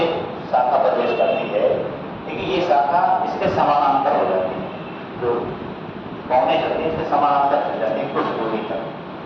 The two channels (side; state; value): both; identical; correlation 1.00